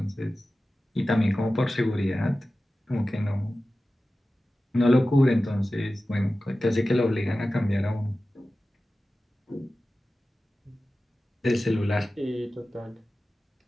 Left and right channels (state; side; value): normal; both; correlation 0.95